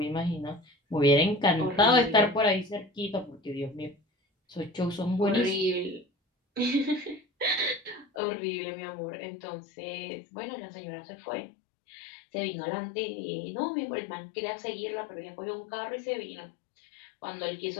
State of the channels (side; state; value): right; drops out; at 8.1 s